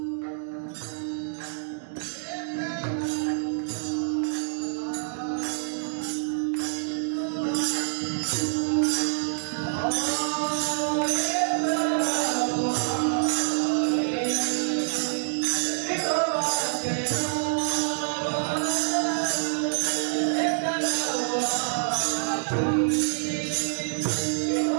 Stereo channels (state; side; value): silent; left; digital silence